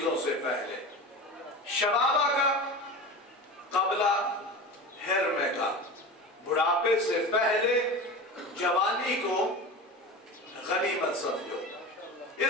سے پہلے. شبابہ کا قبل حرم کا، بڑھاپے سے پہلے جوانی کو غنیمت سمجھو.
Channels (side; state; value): both; normal; correlation 0.30